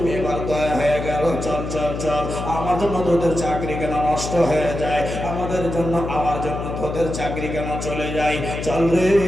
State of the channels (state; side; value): noise; left; hum, 6 dB below the sound